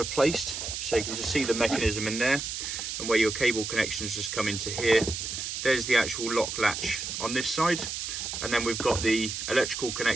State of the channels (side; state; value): right; noise; hiss, 5 dB below the sound